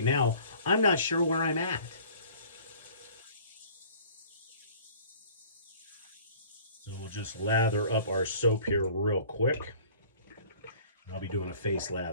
now, I'm not sure where I'm at. So we'll just lather up our soap here real quick. I'll be doing a face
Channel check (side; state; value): both; inverted; correlation -0.50